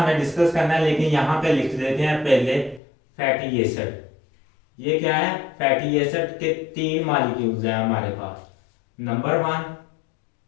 डिस्कस करना है, लेकिन यहां पे लिख देते हैं पहले फैटी एसिड। ये क्या है? फैटी एसिड के 3 मॉलिक्यूल्स हैं हमारे पास, नंबर 1,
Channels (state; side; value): drops out; right; at 2.8 s